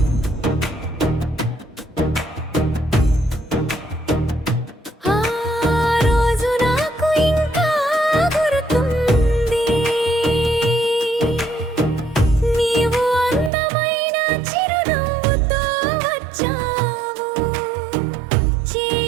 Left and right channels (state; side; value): drops out; left; at 13.5 s